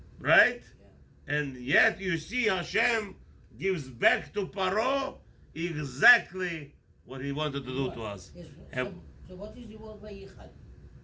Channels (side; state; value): both; identical; correlation 1.00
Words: Right? Yeah. And yet you see Hashem gives back to Paro exactly what he wanted to do to us. Yes. So what is the word Vayichad?